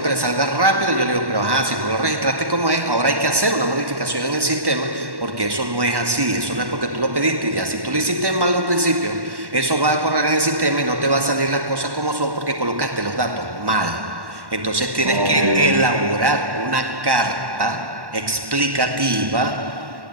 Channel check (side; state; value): left; late; 1.1 ms